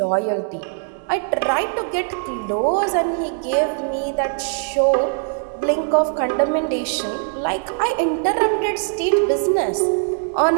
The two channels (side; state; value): left; silent; 65 dB below the other